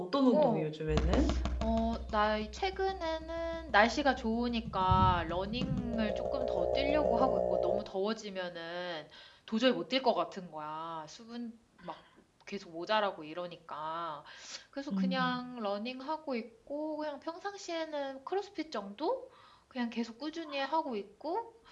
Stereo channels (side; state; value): both; identical; correlation 1.00